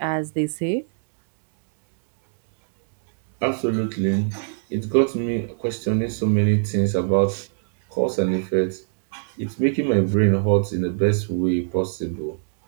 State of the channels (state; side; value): silent; left; digital silence